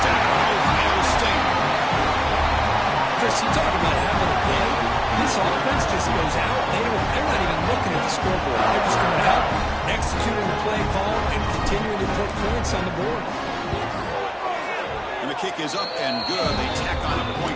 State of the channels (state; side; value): identical; both; correlation 1.00